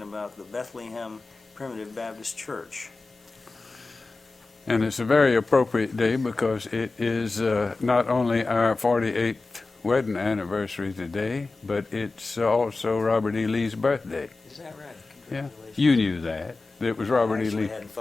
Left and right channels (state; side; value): quieter; right; 3.6 dB